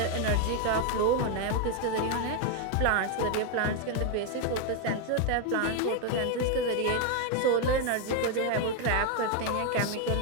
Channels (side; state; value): both; different; correlation 0.01